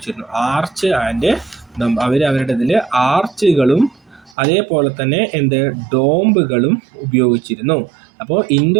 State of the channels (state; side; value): drops out; left; at 4.4 s